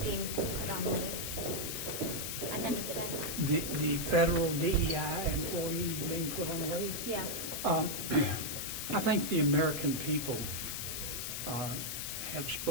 being put on leave at the end of the day? The federal DEI employees being put on leave? Yeah. I think the American people have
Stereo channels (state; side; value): noise; left; hiss, 4 dB below the sound